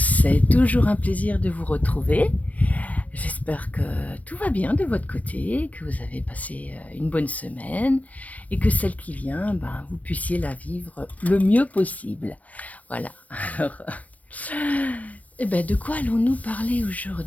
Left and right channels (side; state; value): right; late; 0.069 ms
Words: toujours un plaisir de vous retrouver. J'espère que tout va bien de votre côté, que vous avez passé une bonne semaine et que celle qui vient, vous puissiez la vivre le mieux possible. Voilà. Alors, de quoi allons-nous parler